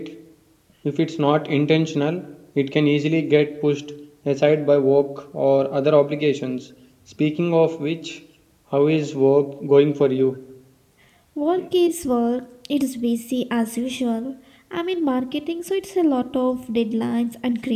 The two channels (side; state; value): both; identical; correlation 1.00